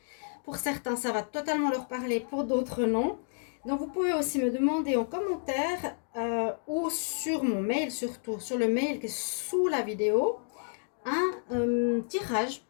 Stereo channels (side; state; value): right; silent; digital silence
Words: Pour certains, ça va totalement leur parler, pour d'autres, non. Donc, vous pouvez aussi me demander en commentaire ou sur mon mail, surtout sur le mail qui est sous la vidéo, un tirage